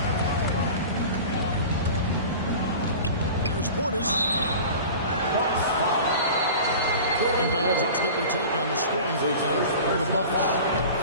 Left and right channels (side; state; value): both; inverted; correlation -0.37